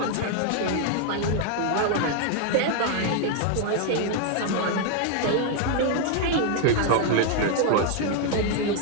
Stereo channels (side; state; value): both; different; correlation 0.00